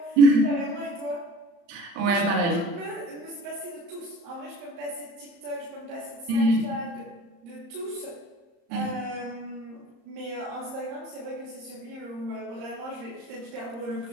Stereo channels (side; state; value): left; late; 34 ms